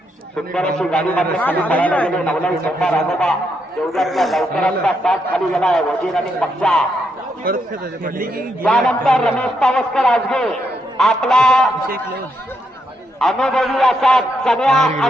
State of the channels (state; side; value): normal; both; correlation 0.79